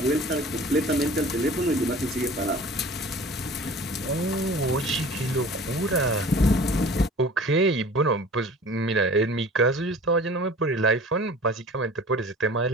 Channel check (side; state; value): both; normal; correlation 0.43